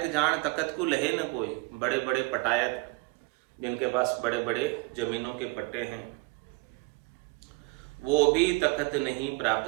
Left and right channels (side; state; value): left; quieter; 26.0 dB